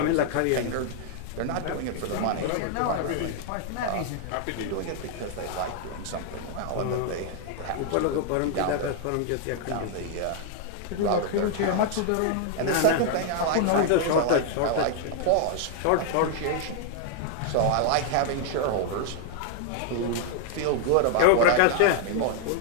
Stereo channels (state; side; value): different; both; correlation 0.00